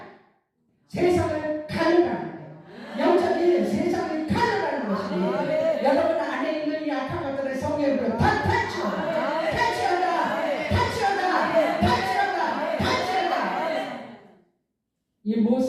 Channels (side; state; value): both; identical; correlation 1.00